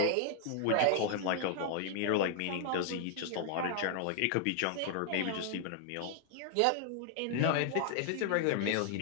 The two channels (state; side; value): different; both; correlation 0.00